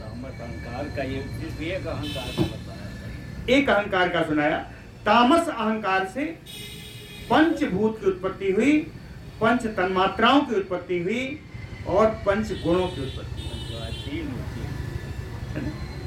अहंकार का ये एक अहंकार का बताया, एक अहंकार का सुनाया। तामस अहंकार से पंचभूत की उत्पत्ति हुई, पंच तन्मात्राओं की उत्पत्ति हुई, और पंच गुणों की उत्पत्ति हुई।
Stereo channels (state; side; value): identical; both; correlation 1.00